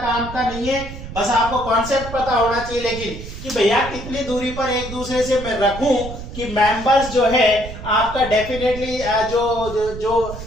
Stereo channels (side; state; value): right; noise; rumble, 11 dB below the sound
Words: का नहीं है, बस आपको कॉन्सेप्ट पता होना चाहिए। लेकिन कि भैया कितनी दूरी पर एक दूसरे से मैं रखूं कि मेंबर्स जो है आपका डेफिनेटली जो